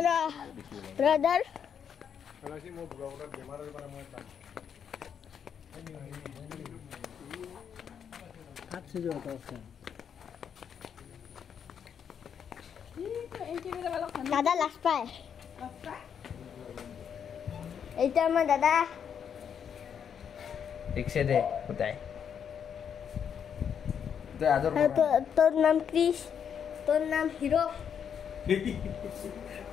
ब्रदर दादा लास्ट पाए এটা আমার দাদা ঠিক সে দে কোথায় তো আদর তোর নাম ক্রিস তোর নাম হিরো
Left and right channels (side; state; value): right; quieter; 7.8 dB